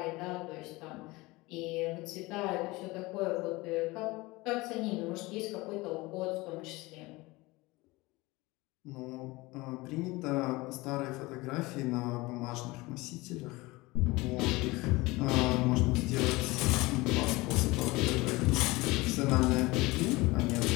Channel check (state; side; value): quieter; right; 21.9 dB